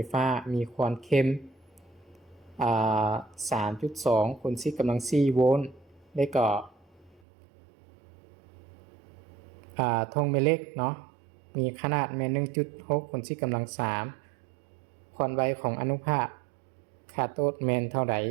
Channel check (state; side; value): drops out; left; at 7.2 s